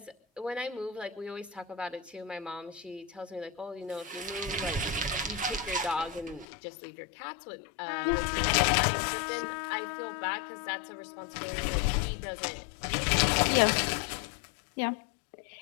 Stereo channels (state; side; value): drops out; right; at 6.5 s